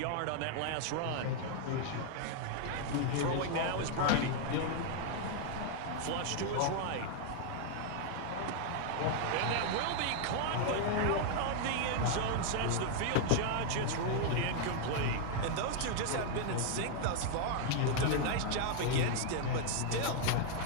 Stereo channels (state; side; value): different; both; correlation 0.00